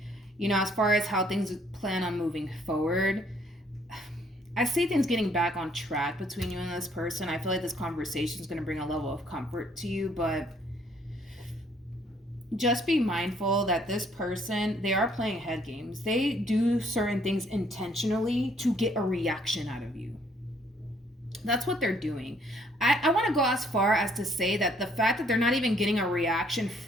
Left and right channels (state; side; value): normal; both; correlation 0.65